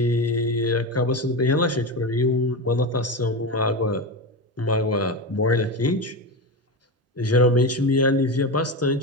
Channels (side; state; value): both; normal; correlation 0.19